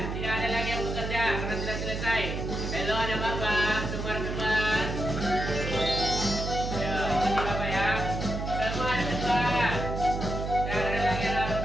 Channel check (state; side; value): noise; right; hum, 4 dB below the sound